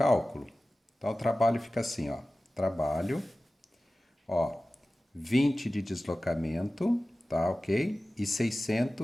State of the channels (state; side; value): normal; both; correlation 0.96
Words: Então, o trabalho fica assim, ó. Trabalho, ó, 20 de deslocamento, tá, ok? E